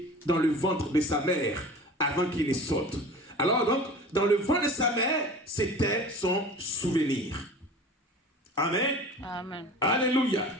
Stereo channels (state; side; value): normal; both; correlation 0.38